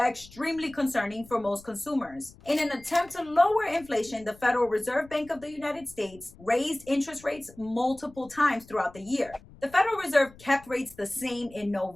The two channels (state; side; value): noise; left; rumble, 23 dB below the sound